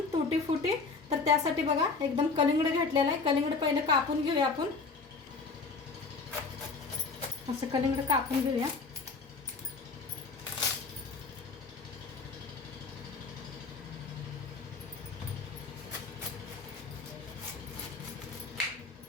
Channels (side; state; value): right; quieter; 4.3 dB